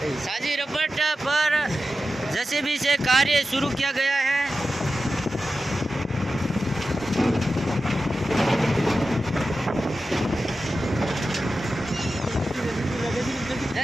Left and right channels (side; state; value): both; normal; correlation 0.92